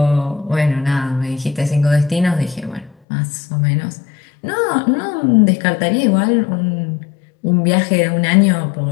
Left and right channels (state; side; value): drops out; right; at 3.0 s